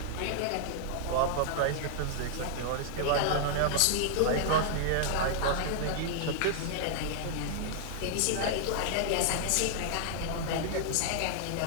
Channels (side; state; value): both; different; correlation -0.01